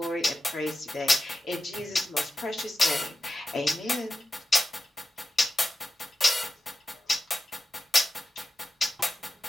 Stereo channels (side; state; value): both; normal; correlation 0.91